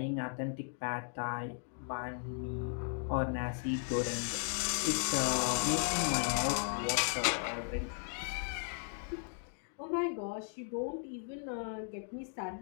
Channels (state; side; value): silent; right; digital silence